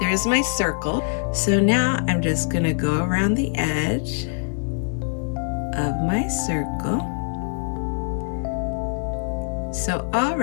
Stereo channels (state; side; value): silent; right; digital silence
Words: my circle. So now I'm just going to go around the edge of my circle. So